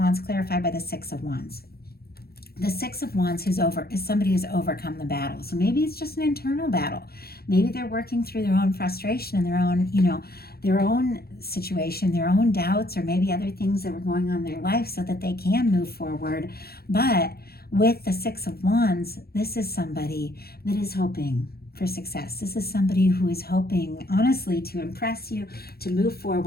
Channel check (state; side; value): late; right; 0.45 ms